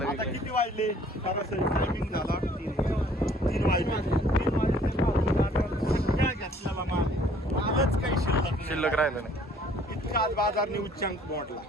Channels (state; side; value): normal; both; correlation 0.58